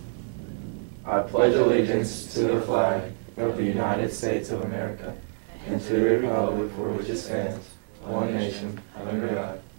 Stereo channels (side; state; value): left; silent; 58 dB below the other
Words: I pledge allegiance to the flag of the United States of America and to the republic for which it stands, one nation, under God,